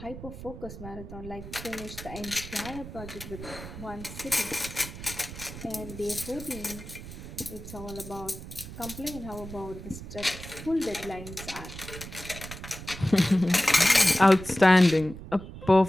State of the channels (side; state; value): right; noise; rumble, 12 dB below the sound